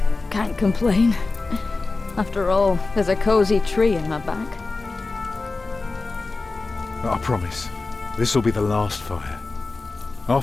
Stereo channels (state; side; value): quieter; right; 3.6 dB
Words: can't complain. After all, there's a cozy tree in my back. I promise, this will be the last fire.